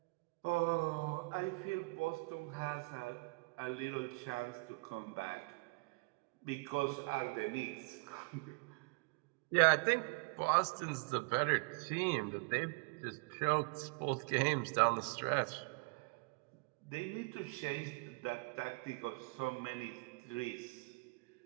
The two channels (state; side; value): quieter; left; 29.9 dB